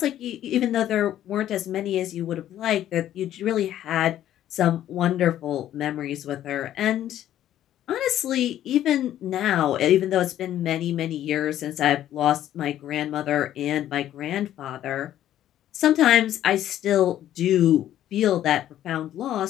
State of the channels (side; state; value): right; quieter; 12.0 dB